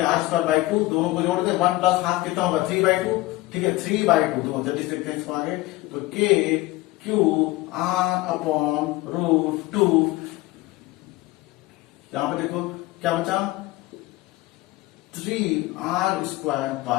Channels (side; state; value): right; quieter; 19.2 dB